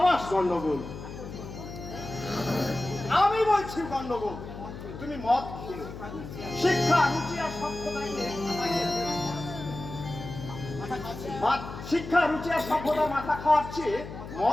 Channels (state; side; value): noise; left; hum, 11 dB below the sound